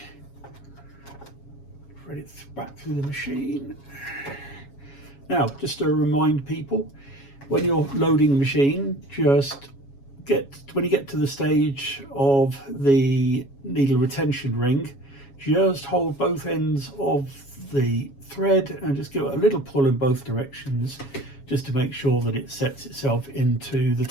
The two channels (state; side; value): late; right; 7.2 ms